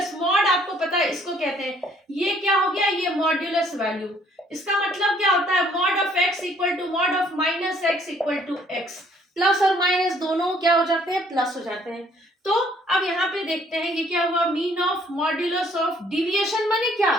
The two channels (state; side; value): normal; both; correlation 0.62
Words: mod आपको पता है इसको कहते हैं. ये क्या हो गया, ये मॉड्यूलस वैल्यू. इसका मतलब क्या होता है, mod of x equal to mod of minus x equal to x. Plus और माइनस दोनों क्या हो जाते हैं, प्लस हो जाते हैं. तो अब यहाँ पे देखते हैं ये क्या हुआ. Mean of modulus of deviation माने क्या,